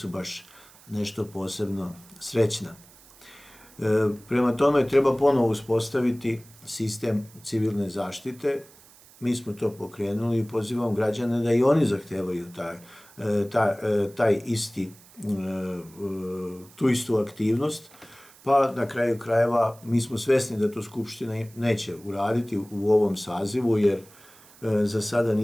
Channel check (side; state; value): right; noise; hiss, 24 dB below the sound